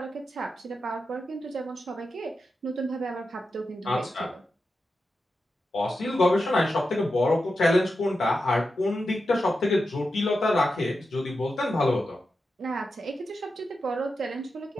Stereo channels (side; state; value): both; normal; correlation 0.89